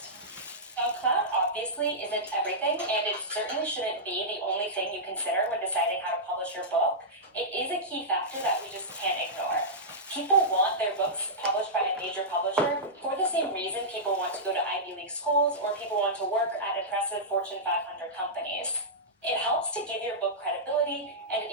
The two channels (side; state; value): both; normal; correlation -0.13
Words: Now, clout obviously isn't everything, and it certainly shouldn't be the only thing you consider when deciding how to publish your book. It is a key factor that we just can't ignore. People want their books published by a major publisher for the same reason people want to go to Ivy League schools or people want to work at impressive Fortune 500 companies. It helps to give your book credibility, and it